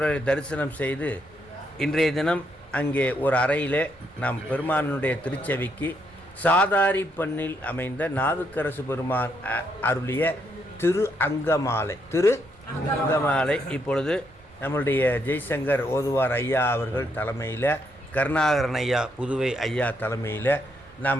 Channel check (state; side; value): noise; right; rumble, 27 dB below the sound